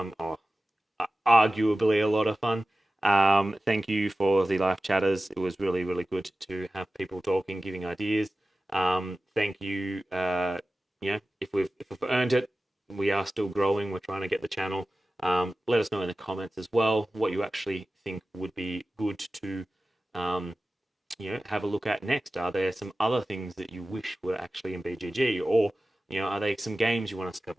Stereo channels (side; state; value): both; normal; correlation 0.95